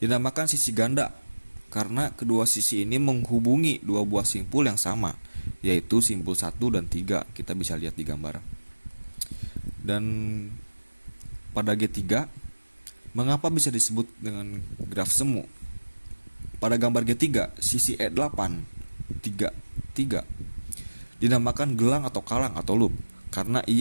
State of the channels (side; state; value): both; inverted; correlation -1.00